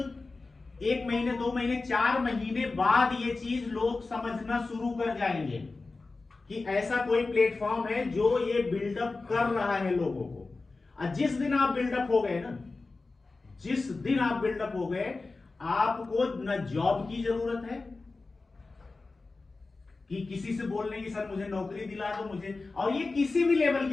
1 महीने, 2 महीने, 4 महीने बाद ये चीज लोग समझना शुरू कर जाएंगे कि ऐसा कोई प्लेटफॉर्म है जो ये बिल्डअप कर रहा है लोगों को। और जिस दिन आप बिल्डअप हो गए ना, जिस दिन आप बिल्डअप हो गए, आपको न जॉब की जरूरत है कि किसी से बोलने की सर मुझे नौकरी दिला दो मुझे, और ये किसी भी लेवल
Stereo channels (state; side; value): quieter; right; 3.7 dB